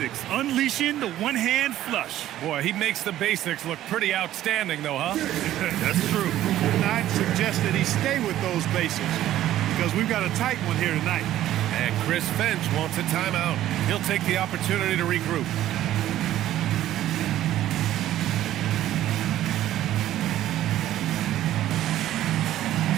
Unleashing the one-hand flush. Boy, he makes the basics look pretty outstanding, though, huh? That's true. I'd suggest that he stay with those basics because we've got a tight one here tonight. And Chris Finch wants a timeout. He'll take the opportunity to regroup.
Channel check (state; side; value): quieter; left; 13.2 dB